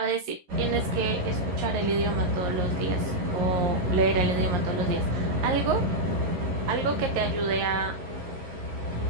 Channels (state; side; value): late; left; 11 ms